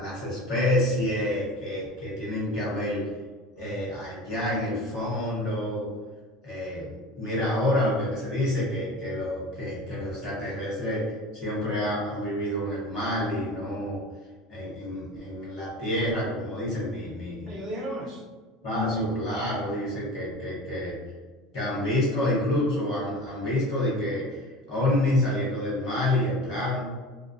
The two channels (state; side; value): normal; both; correlation 0.36